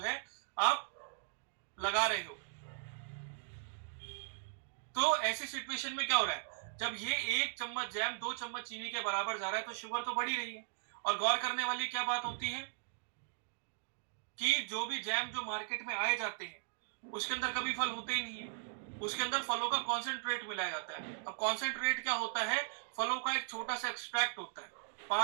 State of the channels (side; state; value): left; silent; digital silence